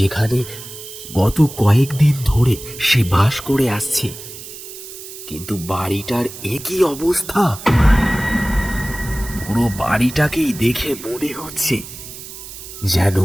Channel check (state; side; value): noise; right; hiss, 13 dB below the sound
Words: গত কয়েকদিন ধরে সে বাস করে আসছে। কিন্তু বাড়িটার একই অবস্থা। পুরো বাড়িটাকেই দেখে মনে হচ্ছে যেন